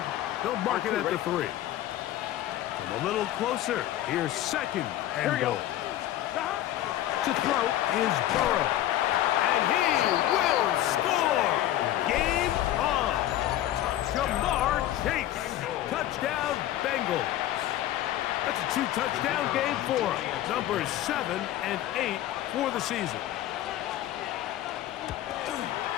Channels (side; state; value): right; quieter; 13.3 dB